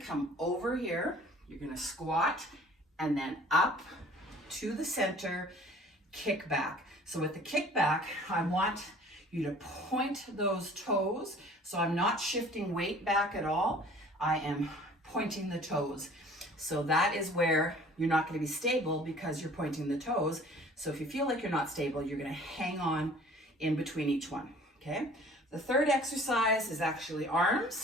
over here, you're gonna squat, and then up to the center, kick back. So with the kick back, I want you to point those toes. So I'm not shifting weight back at all. I am pointing the toes. So that is where you're not going to be stable because you're pointing the toes. So if you feel like you're not stable, you're going to hang on in between each one. Okay. The third exercise is actually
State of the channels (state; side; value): normal; both; correlation 0.50